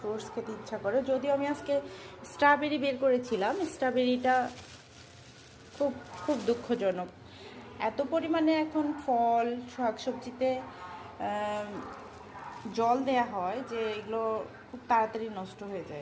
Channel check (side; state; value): both; identical; correlation 1.00